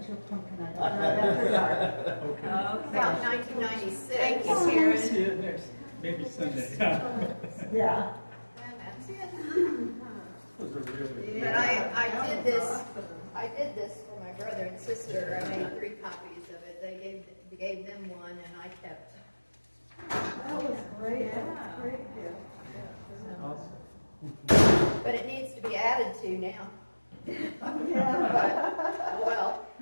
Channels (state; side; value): inverted; both; correlation -1.00